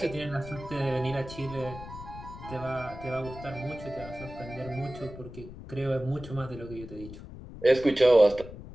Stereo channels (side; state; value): left; noise; rumble, 13 dB below the sound